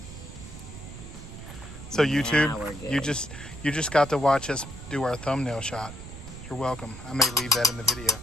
So YouTube, you just got to watch us do our thumbnail shot. You're welcome. I may leave that in the video.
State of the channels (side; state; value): right; noise; rumble, 13 dB below the sound